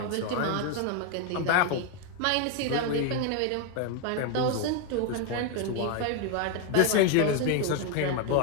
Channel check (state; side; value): different; both; correlation 0.01